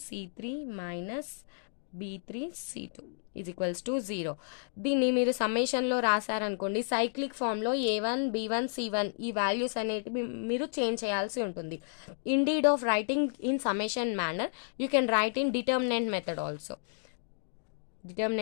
c3 minus b3 c2 is equals to 0. దీన్ని మీరు సమ్మేషన్లో రాశారనుకోండి, సైక్లిక్ ఫామ్లో a1 b1 c1 ఈ వాల్యూస్ అనేటివి మీరు చేంజ్ చేయాల్సి ఉంటుంది. Indeed of writing in summation manner you can write in determinant method also.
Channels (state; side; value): silent; right; digital silence